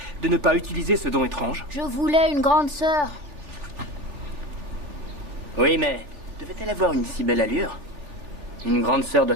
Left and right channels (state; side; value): late; left; 3.4 ms